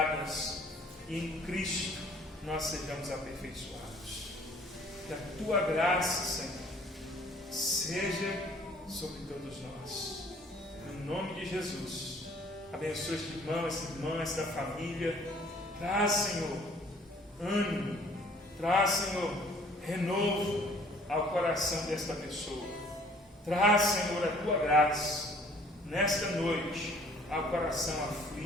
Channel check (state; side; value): normal; both; correlation 0.56